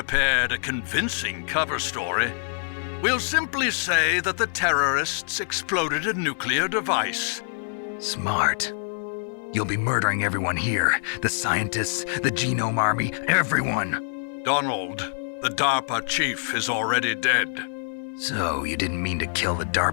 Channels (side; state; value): right; silent; digital silence